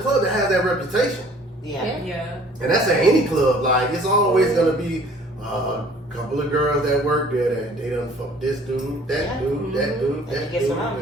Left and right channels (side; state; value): both; normal; correlation 0.53